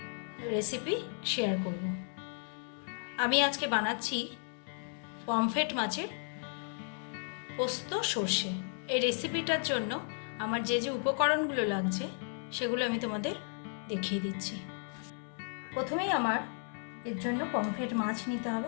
রেসিপি শেয়ার করব। আমি আজকে বানাচ্ছি পমফ্রেট মাছের পোস্ত সর্ষে। এই রেসিপিটার জন্য আমার যে যে উপকরণগুলো লাগছে সেগুলো আমি তোমাদের দেখিয়ে দিচ্ছি। প্রথমেই আমার এর জন্য পমফ্রেট মাছ নিতে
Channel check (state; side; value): silent; right; 55 dB below the other